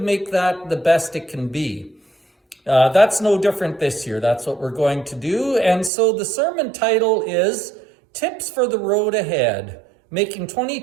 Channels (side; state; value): left; drops out; at 5.9 s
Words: that the best it can be. That's no different this year. That's what we're going to do. And so the sermon title is Tips for the Road Ahead, Making